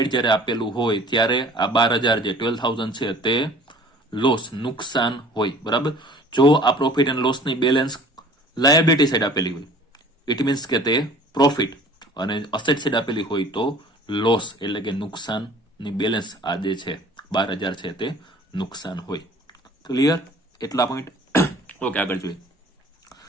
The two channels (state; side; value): normal; both; correlation 0.48